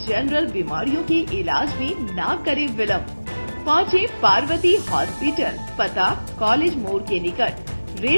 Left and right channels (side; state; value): both; inverted; correlation -1.00